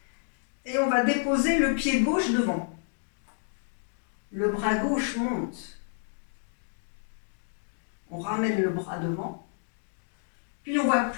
et on va déposer le pied gauche devant. Le bras gauche monte. On ramène le bras devant. Puis on va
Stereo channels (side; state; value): right; silent; digital silence